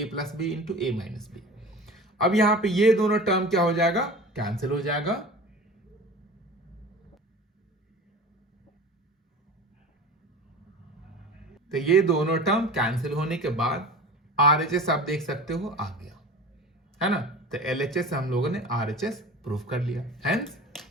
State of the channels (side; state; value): both; normal; correlation 0.37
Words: प्लस बी इंटू ए माइनस बी। अब यहां पे ये दोनों टर्म क्या हो जाएगा, कैंसिल हो जाएगा। तो ये दोनों टर्म कैंसिल होने के बाद आरएचएस आप देख सकते हो आ गया, है ना। तो एलएचएस से हम लोगों ने आरएचएस प्रूफ कर लिया, हेंस